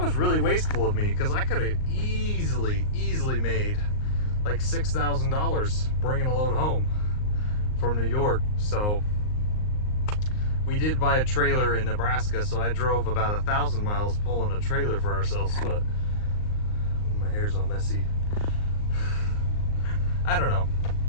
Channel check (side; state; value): right; late; 38 ms